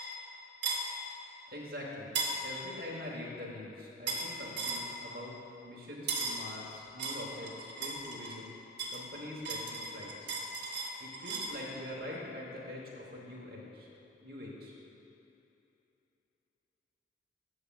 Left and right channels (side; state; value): both; normal; correlation 0.06